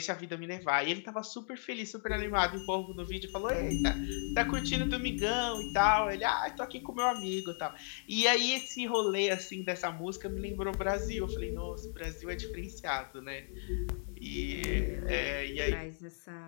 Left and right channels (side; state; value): right; silent; 55 dB below the other